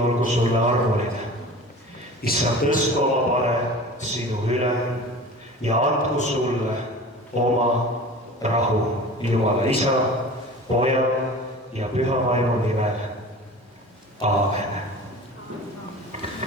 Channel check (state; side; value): normal; both; correlation 0.38